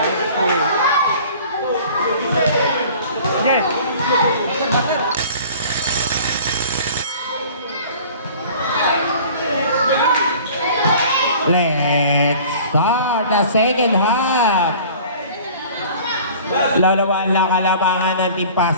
Oo. Okay. Let's start the second half. Lalawan lang kalabangan ng Team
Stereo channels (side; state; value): both; inverted; correlation -0.46